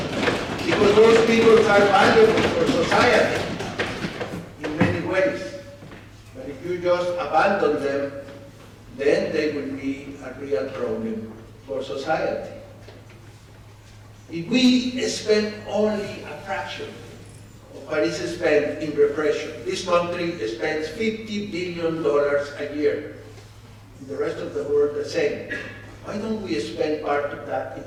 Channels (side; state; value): both; identical; correlation 1.00